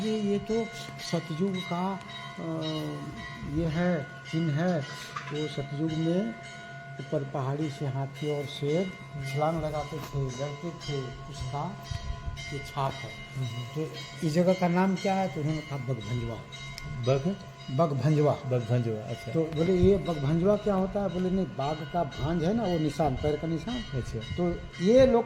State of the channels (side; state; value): both; identical; correlation 1.00